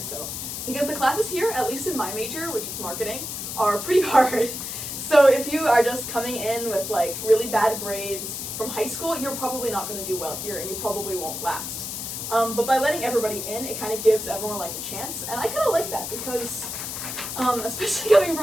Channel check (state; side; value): noise; left; hiss, 6 dB below the sound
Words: so. Because the classes here, at least in my major, which is marketing, are pretty hard. So if you are just coming in with like really bad grades from high school, you're probably not going to do well here and you probably won't last. But by letting everybody in, it kind of gives everyone like a chance, and I kind of like that because especially coming